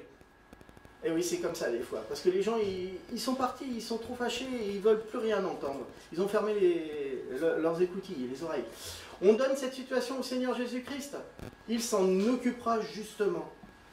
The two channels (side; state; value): both; identical; correlation 1.00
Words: Et oui, c'est comme ça des fois. Parce que les gens, ils sont partis, ils sont trop fâchés et ils veulent plus rien entendre. Ils ont fermé leurs écoutilles, les oreilles. On donne cette situation au Seigneur Jésus-Christ. Il s'en occupera justement.